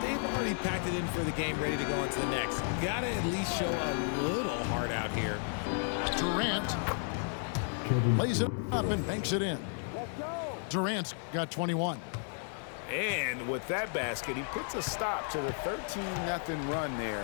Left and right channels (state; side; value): silent; right; 56 dB below the other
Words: they've already packed it in for the game, ready to go on to the next. Gotta at least show a little heart out here. Durant lays it up and banks it in. Durant's got 21. And with that basket, he puts a stop to the 13-0 run